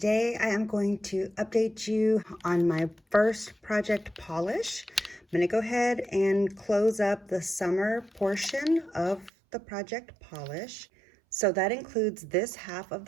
I am going to update you on my first project polish. I'm going to go ahead and close up the summer portion of the project polish. So that includes this half of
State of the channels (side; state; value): left; drops out; at 9.3 s